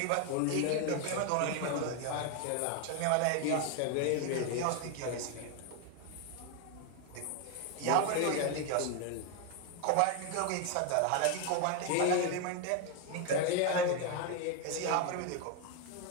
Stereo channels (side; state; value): both; different; correlation 0.01